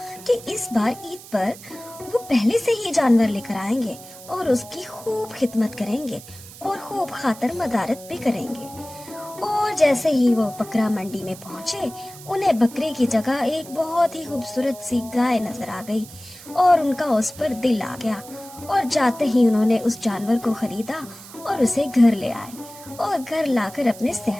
कि इस बार ईद पर वो पहले से ही जानवर लेकर आएंगे और उसकी खूब खिदमत करेंगे और खूब खातर मदारत भी करेंगे। और जैसे ही वो बकरा मंडी में पहुंचे, उन्हें बकरे की जगह एक बहुत ही खूबसूरत सी गाय नजर आ गई और उनका उस पर दिल आ गया। और जाते ही उन्होंने उस जानवर को खरीदा और उसे घर ले आए और घर लाकर अपने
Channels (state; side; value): noise; right; hiss, 17 dB below the sound